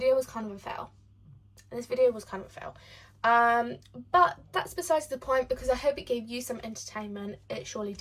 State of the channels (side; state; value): both; identical; correlation 1.00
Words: was kind of a fail. But that's besides the point because I hope it gave you some entertainment. It surely